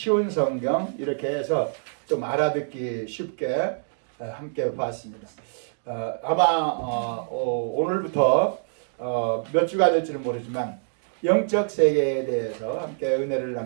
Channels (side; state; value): left; silent; digital silence